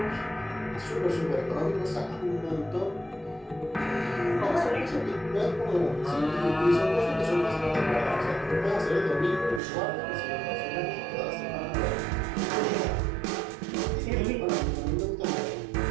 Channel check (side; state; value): left; drops out; at 9.6 s